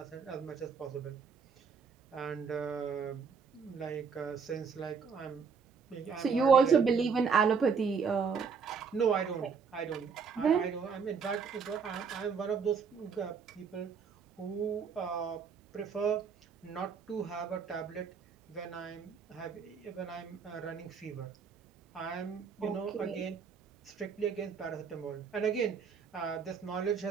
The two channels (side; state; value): left; quieter; 5.9 dB